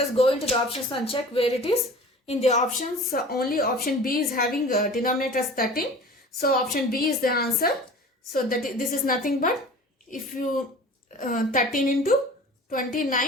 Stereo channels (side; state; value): both; normal; correlation 0.41